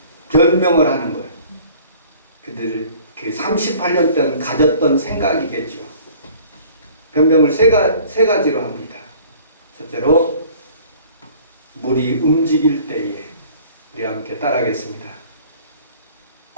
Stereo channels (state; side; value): inverted; both; correlation -0.50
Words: 변명을 하는 거예요. 그들 그 38년 동안 가졌던 생각이겠죠. 변명을 세 가지로 합니다. 첫째로 물이 움직일 때에 우리 함께 따라하겠습니다.